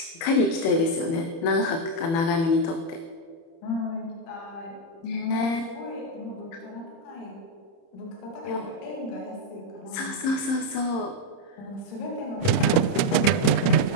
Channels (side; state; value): right; late; 29 ms